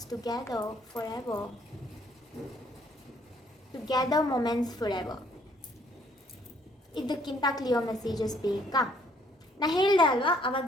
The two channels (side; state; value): both; normal; correlation 0.64